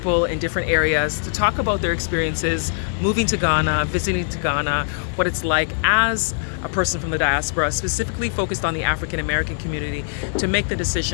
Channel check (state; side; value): silent; right; digital silence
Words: in different areas to talk about their experiences moving to Ghana, visiting to Ghana, what it's like as a person from the diaspora, specifically focused on the African American community, to make the